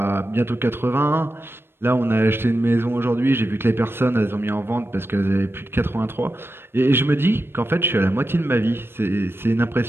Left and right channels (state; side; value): late; left; 0.11 ms